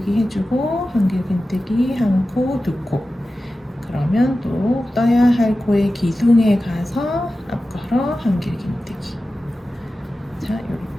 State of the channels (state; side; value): normal; both; correlation 0.94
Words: 해주고 한길긴뜨기 한 코, 2코. 그러면 또 떠야 할 코의 기둥에 가서 앞걸어 한길긴뜨기. 자,